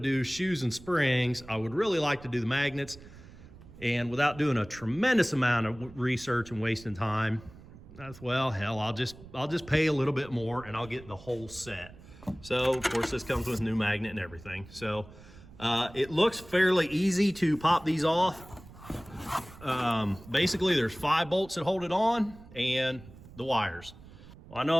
shoes and springs, I would really like to do the magnets. And without doing a tremendous amount of research and wasting time, that's, well, hell, I'll just pay a little bit more and I'll get the whole set. So of course this comes with new magnet and everything. So it looks fairly easy to pop these off. Basically there's 5 bolts that hold it on and the wires. Well, I know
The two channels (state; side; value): noise; right; rumble, 19 dB below the sound